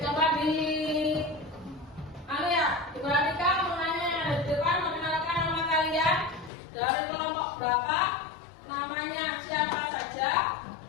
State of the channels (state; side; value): drops out; right; at 6.5 s